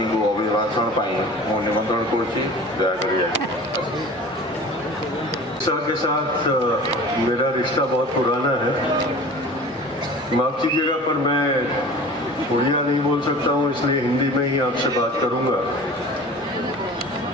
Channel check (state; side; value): normal; both; correlation 0.40